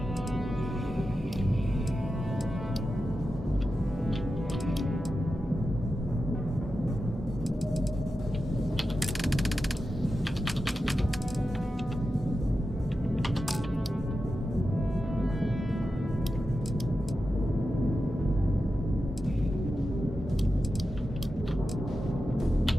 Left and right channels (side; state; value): both; normal; correlation 0.91